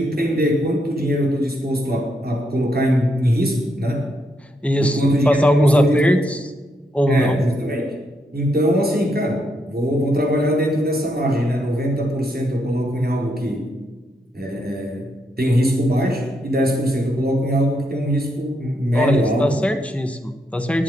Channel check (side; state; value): both; normal; correlation 0.78